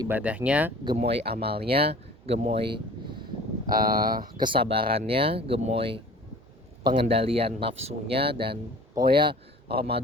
gemoy amalnya, gemoy kesabarannya, gemoy pengendalian nafsunya, dan pokoknya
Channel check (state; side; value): normal; both; correlation 0.45